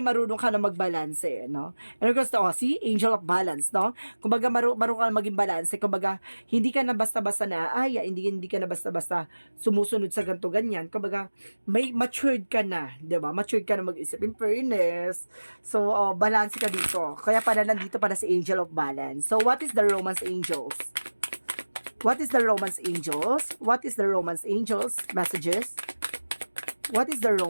marunong ka na magbalanse, no? And of course, see? Angel of Balance, no? Kumbaga, marunong ka na maging balanse. Kumbaga, hindi ka na basta-basta na, hindi ka na basta-basta sumusunod sa ganito, ganyan. Kumbaga, may matured ka na, di ba? Matured ka na mag-isip. In fairness. So, balance ka dito. Kaya pala nandito para si Angel of Balance. So, what is the Romance Angels? What is the Romance Angels? What is the Romance Angels messages? What is the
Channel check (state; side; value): inverted; both; correlation -1.00